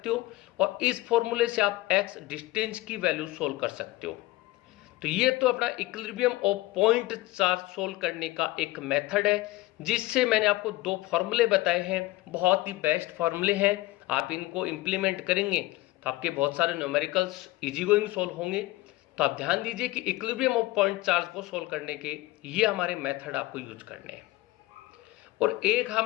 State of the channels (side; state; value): right; quieter; 18.9 dB